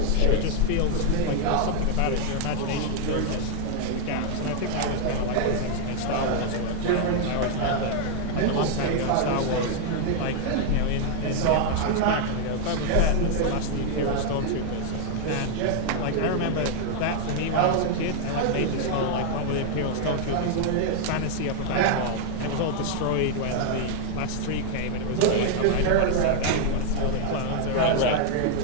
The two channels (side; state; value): both; different; correlation 0.00